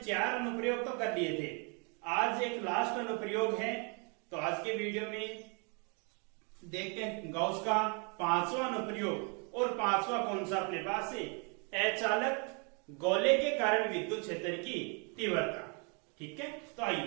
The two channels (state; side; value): quieter; left; 35.4 dB